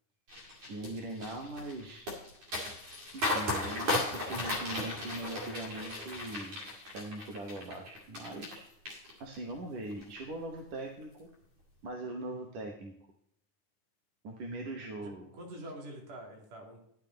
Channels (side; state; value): left; late; 9.7 ms